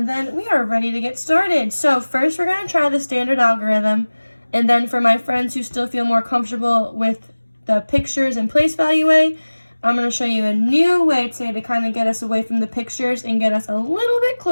then we are ready to get started. So first we're going to try the standard algorithm. And then for my friends who still feel more comfortable with the pictures and place value way, I'm going to show you a new way today to kind of get us away from the pictures and get us a little bit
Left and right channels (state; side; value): inverted; both; correlation -1.00